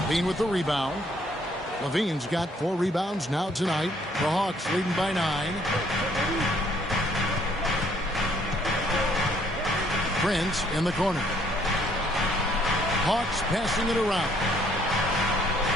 Levine with the rebound. Levine's got 4 rebounds now tonight. The Hawks leading by 9. Prince in the corner. Hawks passing it around.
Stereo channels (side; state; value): both; normal; correlation 0.65